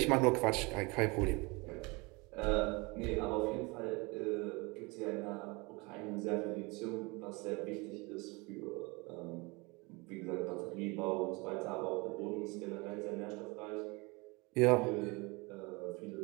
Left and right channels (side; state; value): left; quieter; 26.5 dB